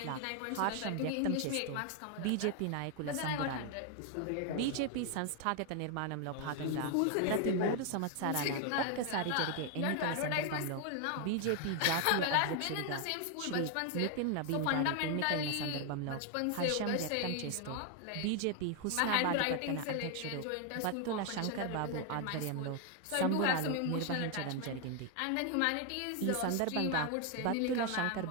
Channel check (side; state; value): both; different; correlation 0.01